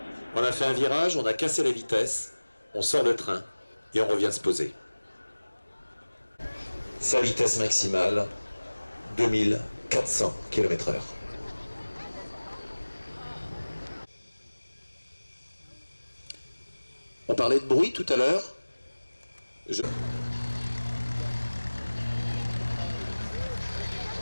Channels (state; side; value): inverted; both; correlation -1.00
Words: On a fait un virage, on a cassé la vitesse, on sort le train et on revient se poser. Sa vitesse maximale, 2400 km/h. On parlait de bruit tout à l'heure.